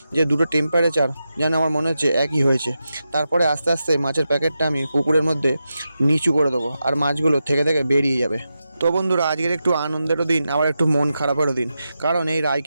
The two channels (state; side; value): inverted; both; correlation -0.89